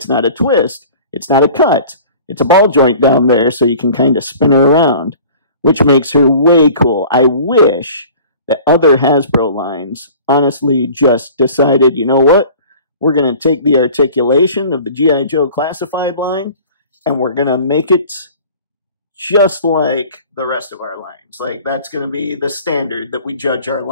not a twist, it's not a cut. It's a ball joint down there so you can kind of spin her around, which makes her way cool. I wish that other Hasbro lines honestly just decided, you know what? We're going to take the articulation of the G.I. Joe classified line and we're going to make it just like the rest of our lines. Like, that's going to be the standard that we judge our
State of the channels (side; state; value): both; inverted; correlation -0.46